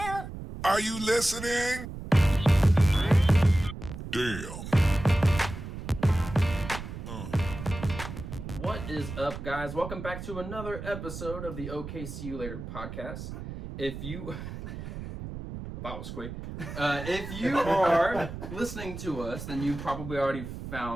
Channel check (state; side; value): noise; right; rumble, 9 dB below the sound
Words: Are you listening? Damn. What is up, guys? Welcome back to another episode of the OKC You Later podcast. If you... That was quick. If you are listening to us, then you probably already